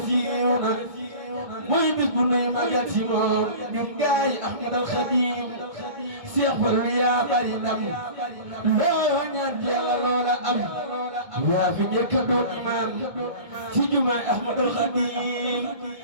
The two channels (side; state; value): left; late; 1.6 ms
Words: siiw na mooy bis bu nuy magal si moom ñun gaay Ahmad al Xadiim Cheikh Fallu yaa bari ndam loo ñaan Yàlla loola am yaa fi njëkk a doon imaam ci jumaay Ahmad al Xadiim